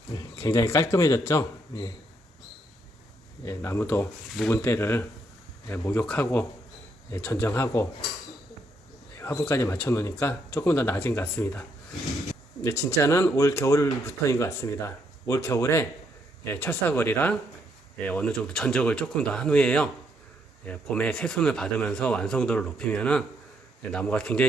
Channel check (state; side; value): normal; both; correlation 0.74